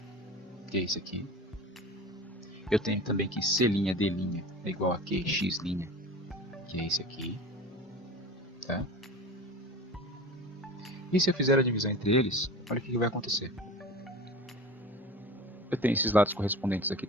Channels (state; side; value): normal; both; correlation 0.35